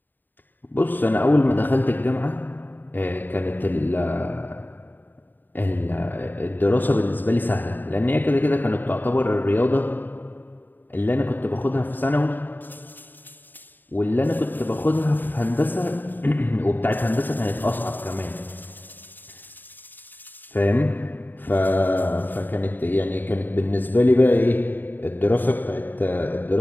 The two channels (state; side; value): late; right; 0.090 ms